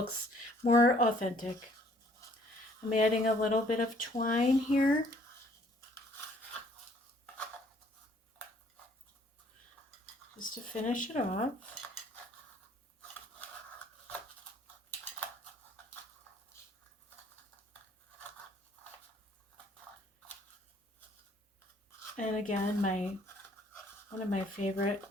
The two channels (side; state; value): both; normal; correlation 0.61